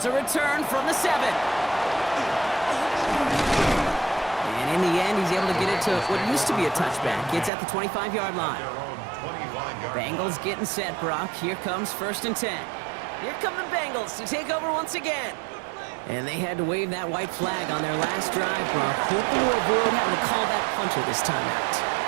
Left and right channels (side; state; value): left; drops out; at 7.5 s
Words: a return from the 7. And in the end, he's able to get it to what used to be a touchback. It's at the 25-yard line. Bengals getting set, Brock. Here comes 1st and 10. Here come the Bengals to take over once again. And they had to wave that white flag on their last drive, Brock. Hoping to avoid having to call that punter this time out.